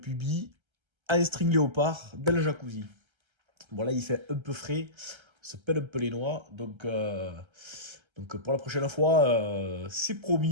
en string léopard dans le jacuzzi. Bon là il fait un peu frais, on se pèle un peu les noix, donc pour la prochaine fois, c'est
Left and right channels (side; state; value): left; late; 1.3 ms